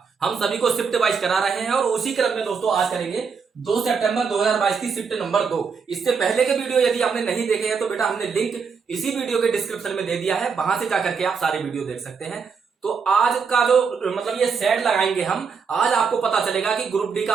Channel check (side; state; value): left; quieter; 5.8 dB